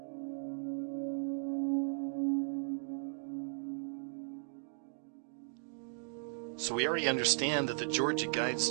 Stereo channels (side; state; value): left; silent; digital silence